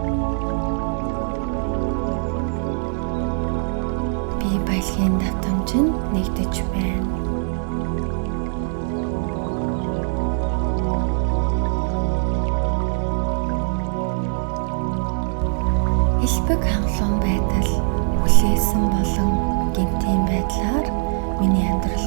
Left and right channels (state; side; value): silent; left; 63 dB below the other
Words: Би баялагын давтамжинд нэгдэж байна. Элбэг хангалуун байдал хүлээсэн болон гинтийн байдлаар миний амьдрал